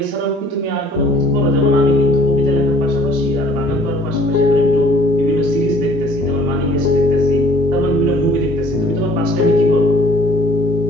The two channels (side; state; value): left; late; 14 ms